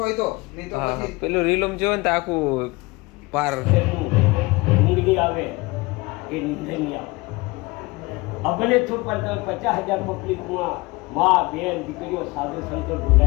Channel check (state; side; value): quieter; right; 23.5 dB